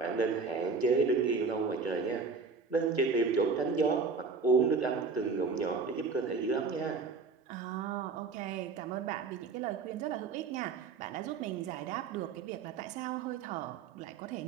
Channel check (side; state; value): left; quieter; 4.7 dB